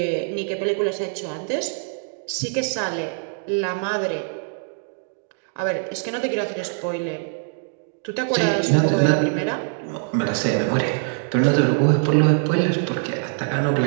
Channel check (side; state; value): left; silent; 61 dB below the other